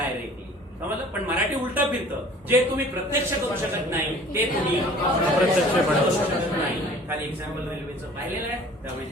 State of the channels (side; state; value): both; normal; correlation 0.49